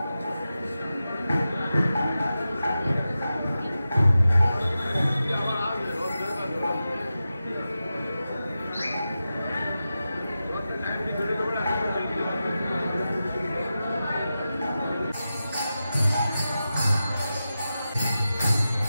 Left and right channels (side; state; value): both; inverted; correlation -0.92